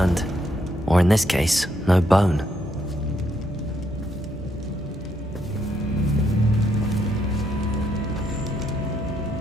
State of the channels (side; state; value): both; normal; correlation 0.75